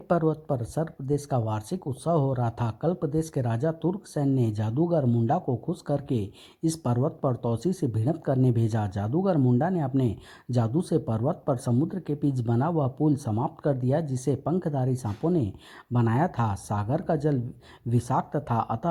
पर्वत पर सर्प प्रदेश का वार्षिक उत्सव हो रहा था। कल प्रदेश के राजा तुर्कसेन ने जादूगर मुंडा को खुश करके इस पर्वत पर तौसी से भिड़ंत करने भेजा। जादूगर मुंडा ने अपने जादू से पर्वत पर समुद्र के बीच बना हुआ पुल समाप्त कर दिया, जिसे पंखधारी सांपों ने बनाया था। सागर का जल विषाक्त था,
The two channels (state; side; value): identical; both; correlation 1.00